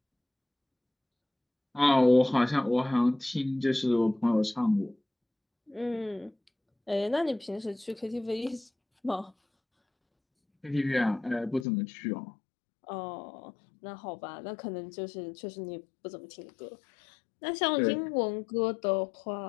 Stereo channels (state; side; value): drops out; right; at 11.7 s